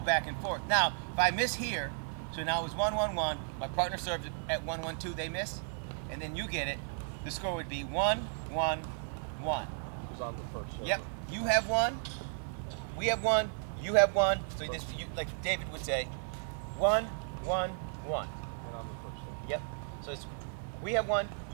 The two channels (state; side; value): silent; left; digital silence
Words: back and forth. Now, if I miss here, so now it was 1-1-1, my partner served at 1-1-2, they miss, and then you get it, the score would be 1-1-1. Who's on the first server? Yep. You have 1, we have 1, you have 1. So like David would say, 1-1-1. And I'm the first server. Yep. So it's we have 1,